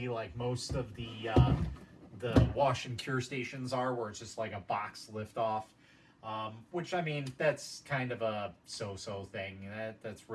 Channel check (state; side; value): identical; both; correlation 1.00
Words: like most of the wash and cure stations are, where it's just like a box lift off. Which, I mean, that's kind of a so-so thing. That's